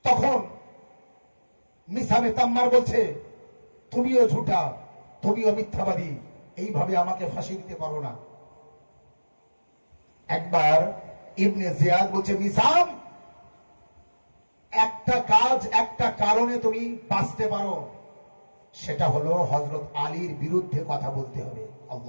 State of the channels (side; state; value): both; inverted; correlation -1.00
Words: তখন মিসামে তাম্মার বলছে, তুমিও ঝুটা, তুমিও মিথ্যাবাদী, এইভাবে আমাকে ফাঁসি দিতে পারো না। একবার ইবনে জিয়াদ বলছে, মিসাম, একটা কাজ, একটা কারণে তুমি বাঁচতে পারো, সেটা হলো হযরত আলীর বিরুদ্ধে কথা বলতে হবে।